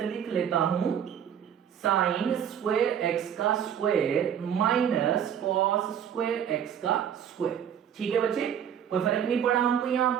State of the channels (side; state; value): left; quieter; 8.8 dB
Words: लिख लेता हूं, sin स्क्वायर x का square minus cos square x का स्क्वायर, ठीक है बच्चे। कोई फर्क नहीं पड़ा हमको, यहाँ